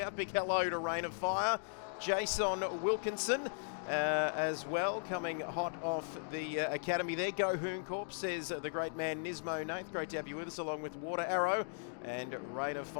Big hello to Rain of Fire, Jason Wilkinson as well, coming hot off the academy there. Go Hoon Corp, says the great man Nismo Nath. Great to have you with us, along with Water Arrow and Rain of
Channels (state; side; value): silent; right; digital silence